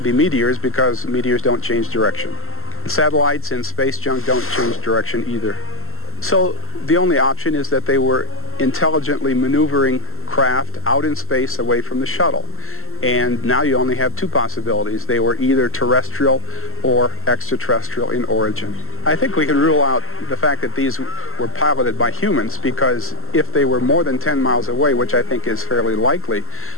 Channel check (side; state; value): right; late; 0.62 ms